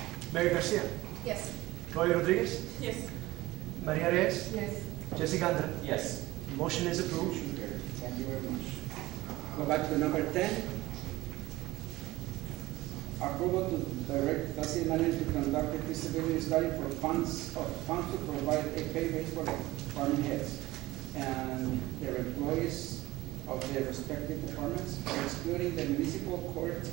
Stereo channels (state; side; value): quieter; left; 18.5 dB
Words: Mary Garcia, Yes. Roy Rodriguez, Yes. Maria Reyes, Yes. Jessica Andra. Yes. Motion is approved. Motion carried. Thank you very much. Go back to number 10. Approval to direct the city manager to conduct a feasibility study for funds to provide a pay raise for department heads and their employees of their respective departments, excluding the municipal court